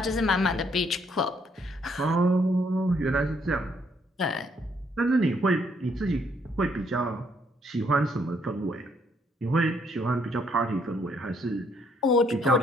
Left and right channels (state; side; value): normal; both; correlation 0.69